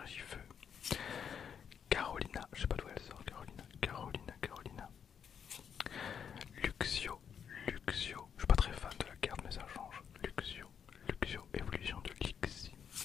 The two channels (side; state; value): right; quieter; 7.6 dB